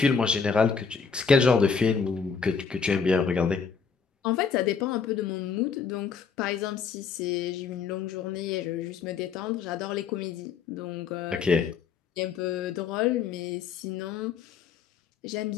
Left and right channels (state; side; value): quieter; right; 5.9 dB